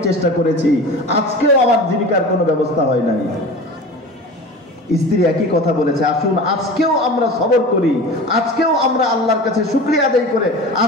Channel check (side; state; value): both; normal; correlation 0.35